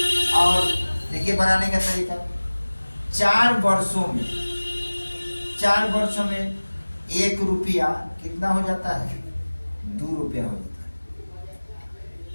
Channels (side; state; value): both; inverted; correlation -1.00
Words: और देखिए बनाने का तरीका, 4 वर्षों में 1 रुपया कितना हो जाता है? 2 रुपया हो जाता है।